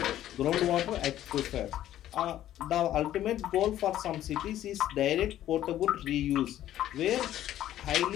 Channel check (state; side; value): quieter; right; 12.6 dB